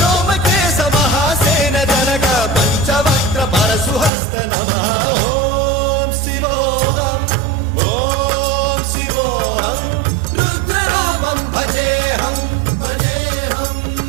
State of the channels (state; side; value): drops out; left; at 4.1 s